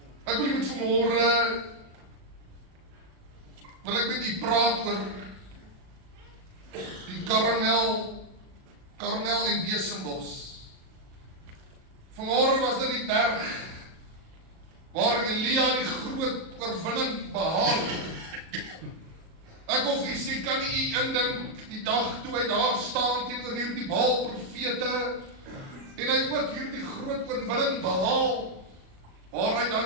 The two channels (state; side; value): late; left; 37 ms